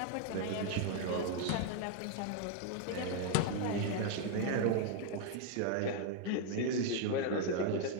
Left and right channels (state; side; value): different; both; correlation 0.00